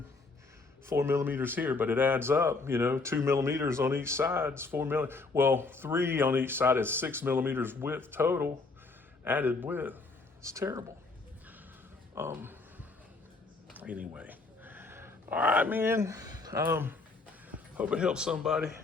4 millimeters here, but it adds up, 2 millimeters on each side is 4 millimeters. Well, 3 on each side is 6 millimeters width total, added width. It's terrible. Anyway, all right, man. Hope it helps somebody.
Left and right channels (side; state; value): right; quieter; 3.8 dB